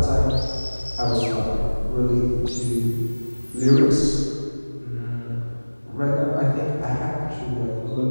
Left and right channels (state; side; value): inverted; both; correlation -1.00